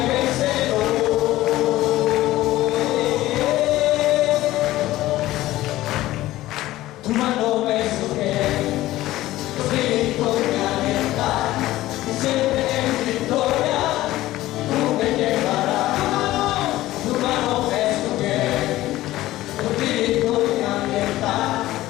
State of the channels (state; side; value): quieter; right; 16.1 dB